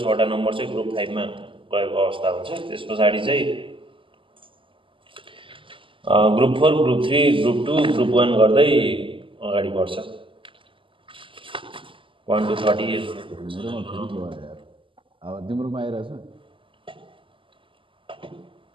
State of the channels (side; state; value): left; late; 0.25 ms